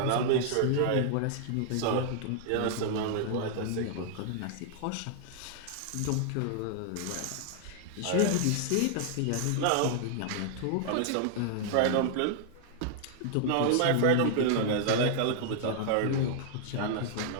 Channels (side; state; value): both; different; correlation -0.01